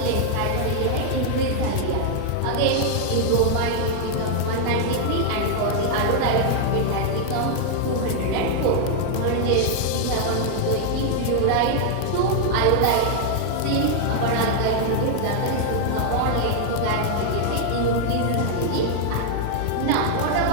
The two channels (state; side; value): different; both; correlation 0.00